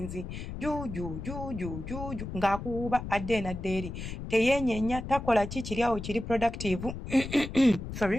juuju ng'akuwuuba adde n'adda eri teyeenyeenya takola kiri awo kiri productive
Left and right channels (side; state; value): left; noise; rumble, 8 dB below the sound